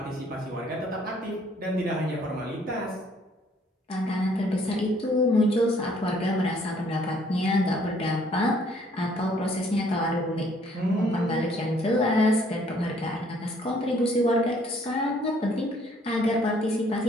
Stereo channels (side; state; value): both; normal; correlation 0.62